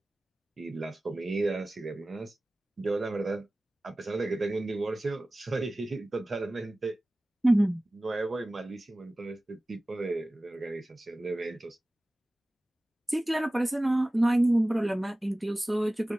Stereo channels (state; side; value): normal; both; correlation 0.97